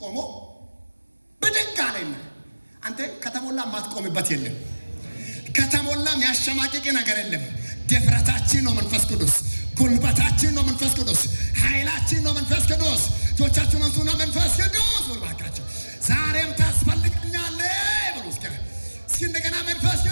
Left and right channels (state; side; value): inverted; both; correlation -1.00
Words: ቆሞ ብድግ አለና አንተ ከተሞላ ማትቆምበት የለም፣ ከተሞላ የሚያሸማቅቅ ነገር የለም። ድፍረታችን ነው መንፈስ ቅዱስ፣ ጉልበታችን ነው መንፈስ ቅዱስ፣ ኃይላችን ነው መንፈስ ቅዱስ። እጆቻችሁን አንሱና መንፈስ ቅዱስ ወልባካችሁ ዛሬም ታስፈልገኛለህ ብሎ እስኪ እንደገና መንፈስ